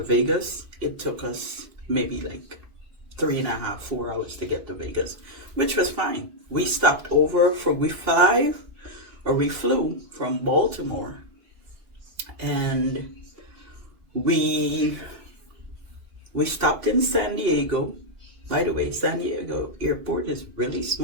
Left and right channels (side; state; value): left; late; 2.5 ms